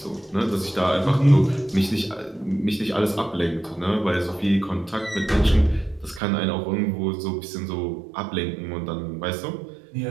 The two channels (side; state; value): left; drops out; at 6.2 s